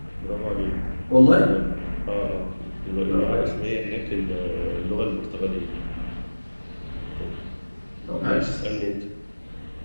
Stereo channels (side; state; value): both; inverted; correlation -1.00